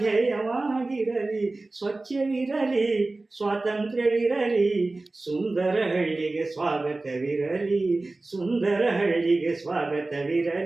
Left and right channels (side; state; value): left; quieter; 3.2 dB